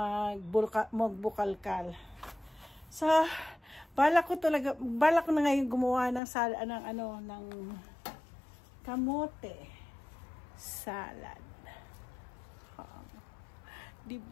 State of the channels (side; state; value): right; drops out; at 6.2 s